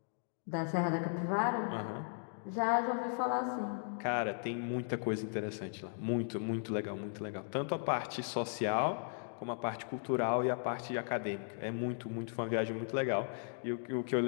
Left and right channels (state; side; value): silent; right; digital silence